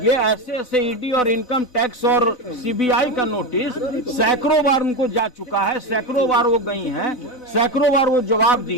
ऐसे ईडी और इनकम टैक्स और सीबीआई का नोटिस सैकड़ों बार उनको जा चुका है, सैकड़ों बार वो गई हैं, सैकड़ों बार वो जवाब दी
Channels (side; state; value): right; late; 4.0 ms